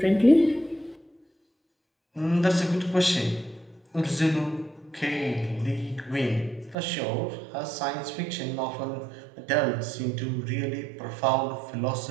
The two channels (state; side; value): drops out; left; at 6.8 s